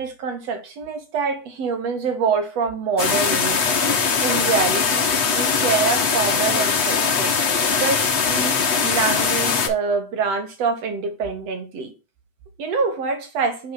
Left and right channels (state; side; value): late; left; 8.1 ms